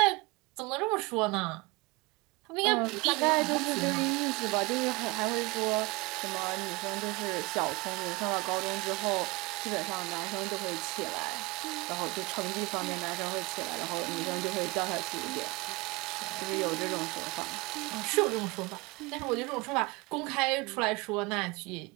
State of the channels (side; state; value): left; quieter; 24.8 dB